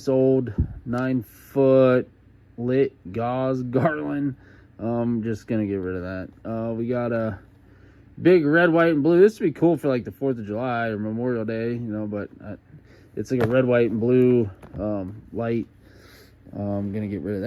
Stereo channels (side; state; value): both; identical; correlation 1.00